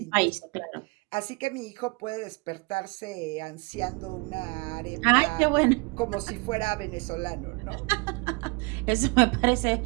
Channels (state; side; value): quieter; left; 29.4 dB